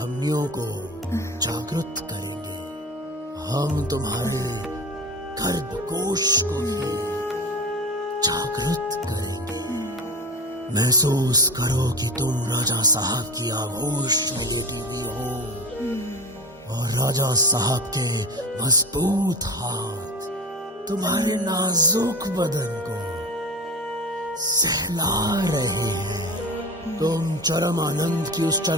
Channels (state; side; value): normal; both; correlation 0.29